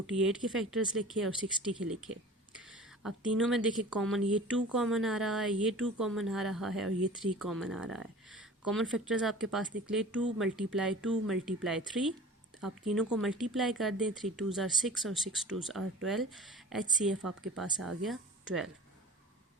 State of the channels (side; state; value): both; normal; correlation 0.41